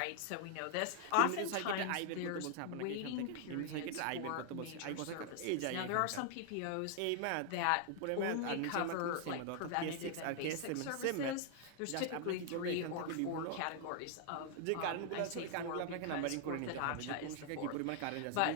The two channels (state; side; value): different; both; correlation 0.00